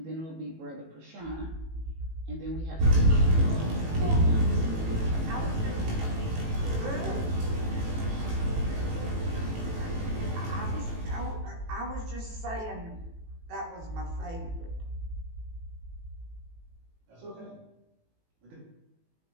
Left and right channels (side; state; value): left; late; 18 ms